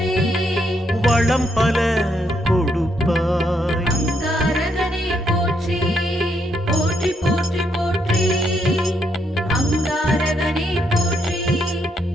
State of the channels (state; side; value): normal; both; correlation 0.76